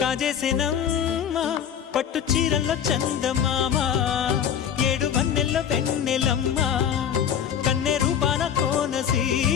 కాజేసేనమ్మా పట్టు చీరల్లో చందమామా ఏడు వన్నెల్ల వెన్నెలమ్మా కన్నె రూపాన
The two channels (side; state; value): right; quieter; 8.7 dB